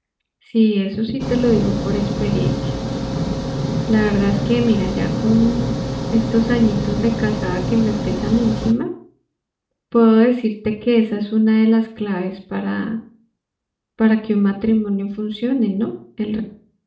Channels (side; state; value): both; identical; correlation 1.00